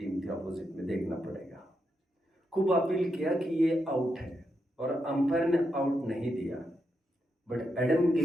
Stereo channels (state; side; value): normal; both; correlation 0.83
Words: थी, अपोजिट में देखना पड़ेगा। खूब अपील किया कि ये आउट है, और अंपायर ने आउट नहीं दिया, but Adam